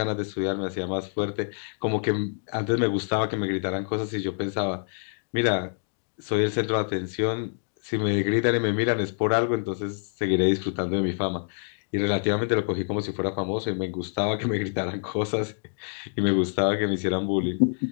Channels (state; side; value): silent; right; digital silence